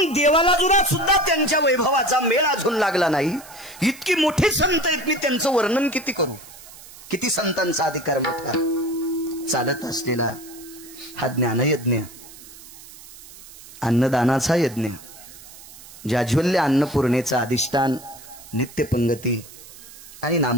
देवाला जुना सुद्धा त्यांच्या वैभवाचा मेळ अजून लागला नाही. इतकी मोठी संत आहेत. मी त्यांचं वर्णन किती करू? किती संतांचा अधिकार मोठा. चालत असलेला हा ज्ञानयज्ञ, अन्नदानाचा यज्ञ, जाज्वल्य अन्नपूर्णेचा अधिष्ठान, नित्यपंगती आणि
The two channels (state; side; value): noise; right; hiss, 18 dB below the sound